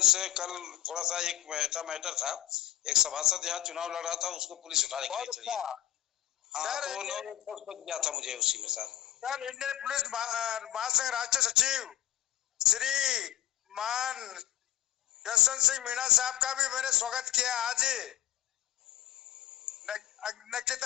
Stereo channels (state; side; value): quieter; right; 12.9 dB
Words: से कल थोड़ा सा एक मैटर था। एक सभासद यहाँ चुनाव लड़ रहा था, उसको पुलिस उठाने के लिए चली। हाँ, तो 9 बज गया था मुझे उसी में सर। सर, इंडियन पुलिस महासंघ राष्ट्रीय सचिव श्री मान यशवंत सिंह मीणा साहब का भी मैंने स्वागत किया। आज